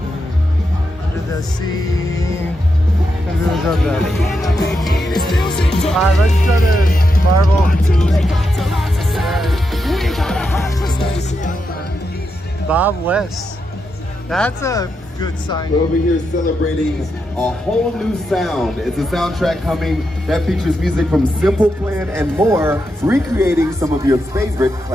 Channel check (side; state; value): both; normal; correlation 0.85